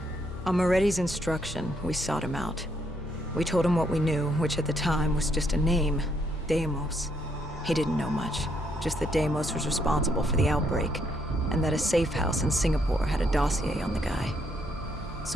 On Moretti's instruction, we sought him out. We told him what we knew, which at the time was just a name, Deimos. He didn't know much, just that Deimos was responsible for the outbreak, and that a safe house in Singapore had a dossier on the guy.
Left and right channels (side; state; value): both; normal; correlation 0.73